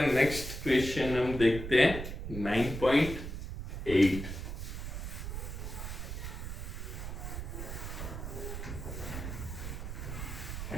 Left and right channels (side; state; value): right; noise; rumble, 6 dB below the sound